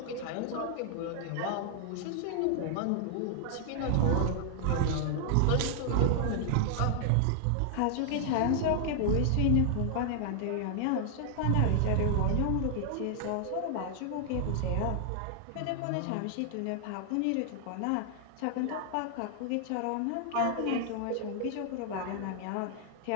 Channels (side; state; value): both; different; correlation 0.00